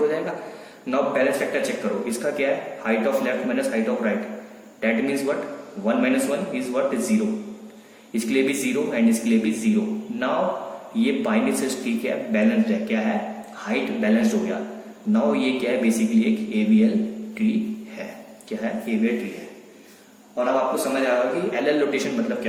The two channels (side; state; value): both; identical; correlation 1.00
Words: जाएगा। नाउ बैलेंस फैक्टर चेक करो, इसका क्या है? Height of left minus height of right. That means what? 1 - 1 is what? 0। इसके लिए भी 0 एंड इसके लिए भी 0। नाउ ये बाइनरी ट्री क्या है? बैलेंस्ड है। क्या है? हाइट बैलेंस्ड हो गया। नाउ ये क्या है, बेसिकली एक AVL ट्री है। क्या है, AVL ट्री है। और अब आपको समझ आएगा कि LL रोटेशन मतलब